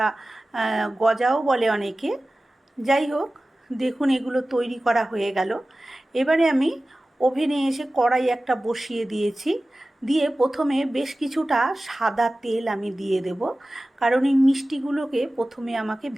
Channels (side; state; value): both; normal; correlation 0.96